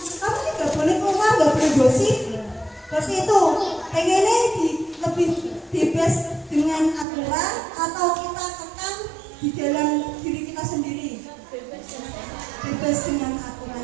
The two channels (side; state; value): left; drops out; at 7.1 s